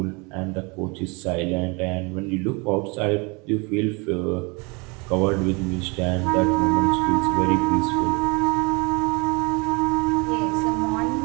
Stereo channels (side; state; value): left; quieter; 29.3 dB